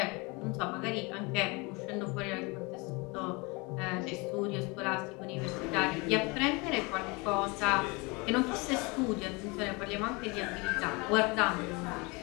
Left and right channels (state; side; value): quieter; right; 27.4 dB